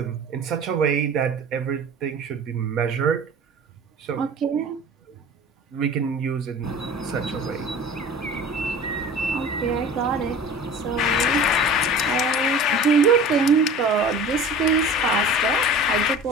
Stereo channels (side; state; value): both; normal; correlation 0.40